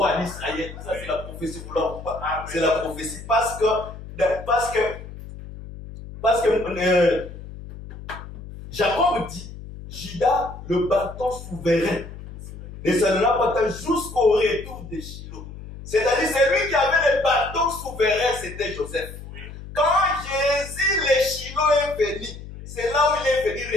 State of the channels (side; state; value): left; noise; hum, 13 dB below the sound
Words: d'Israël. Ça, c'est la prophétie, vous l'avez ou pas? C'est la prophétie parce que Jacob dit, Judas, le bâton souverain, ne s'en pas tant jusqu'au retour de Shiloh. C'est-à-dire, c'est lui qui avait le bâton souverain, c'était Joseph. Quand Jésus, le Shiloh est venu, c'est là où il est venu